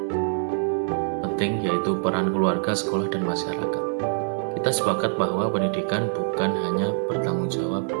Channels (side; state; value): left; silent; digital silence